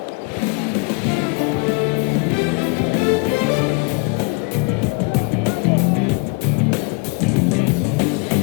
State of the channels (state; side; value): quieter; right; 33.6 dB